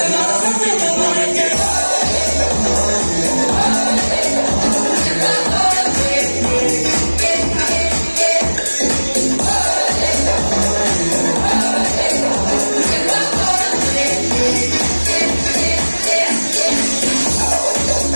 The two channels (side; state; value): both; inverted; correlation -1.00